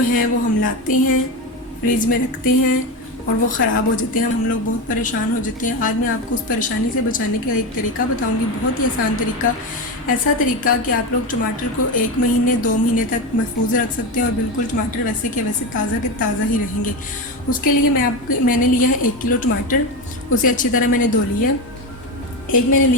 हैं वो हम लाते हैं, फ्रिज में रखते हैं और वो ख़राब हो जाते हैं। हम लोग बहुत परेशान हो जाते हैं। आज मैं आपको उस परेशानी से बचाने का एक तरीका बताऊँगी, बहुत ही आसान तरीका। ऐसा तरीका कि आप लोग टमाटर को 1 महीने 2 महीने तक महफूज रख सकते हैं और बिल्कुल टमाटर वैसे के वैसे ताज़ा के ताज़ा ही रहेंगे। उसके लिए मैंने लिया है 1 किलो टमाटर। उसे अच्छी तरह मैंने धो लिया। एक मैंने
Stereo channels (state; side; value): normal; both; correlation 0.17